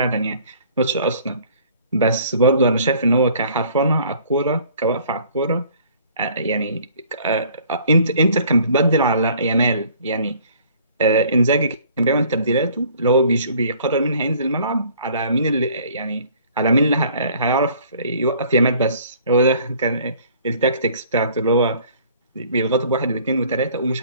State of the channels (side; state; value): both; inverted; correlation -0.55